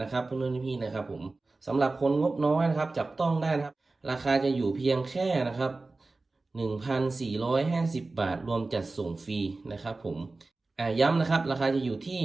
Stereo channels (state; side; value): quieter; left; 3.4 dB